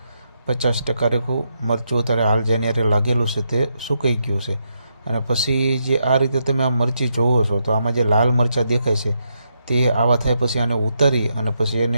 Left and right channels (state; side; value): inverted; both; correlation -0.81